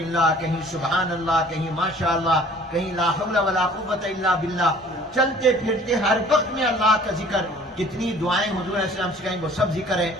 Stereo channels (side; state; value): both; normal; correlation 0.52